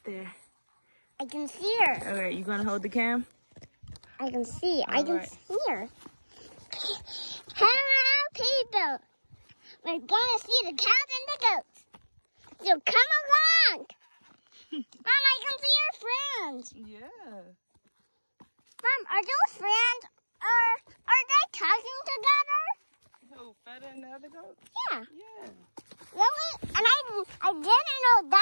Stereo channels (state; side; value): inverted; both; correlation -1.00